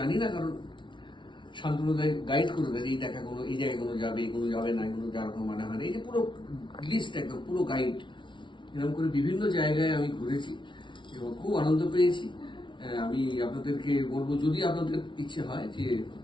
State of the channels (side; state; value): right; late; 0.24 ms